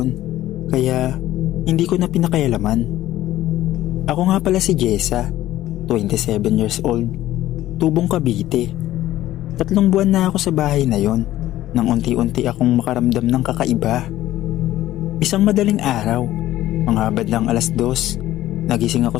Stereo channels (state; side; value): quieter; right; 14.4 dB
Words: kaya hindi ko na pinakailaman. Ako nga pala si Jessa, 27 years old, tubong Cavite. 3 buwan na ako sa bahay na yon nang unti-unti akong makaramdam ng kakaiba. Isang madaling araw, mga badlang 2:00, nagising ako